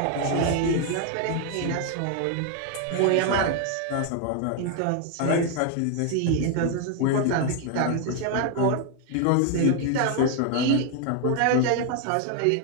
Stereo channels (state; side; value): different; both; correlation 0.01